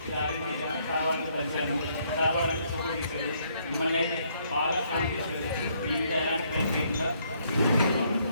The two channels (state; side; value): inverted; both; correlation -0.69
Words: ఇలా అరేంజ్ చేశాను. కావాలని కలిశాను, కావాలని ఫోటో తీశాడు. మిమ్మల్ని అయితే బాగా ఫోన్ చేశాడు. మీ మీద ఎలాంటి ట్రైన్ చేయకుండా